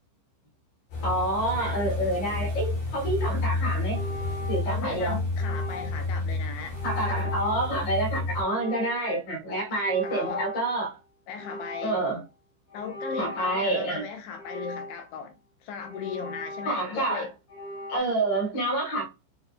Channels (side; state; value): right; late; 15 ms